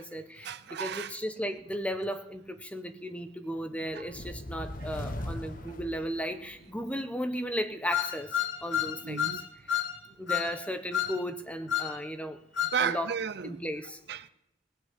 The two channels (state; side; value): normal; both; correlation 0.53